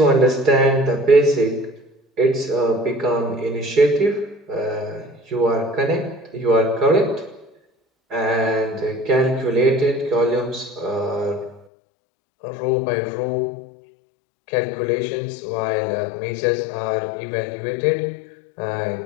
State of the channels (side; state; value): right; drops out; at 11.7 s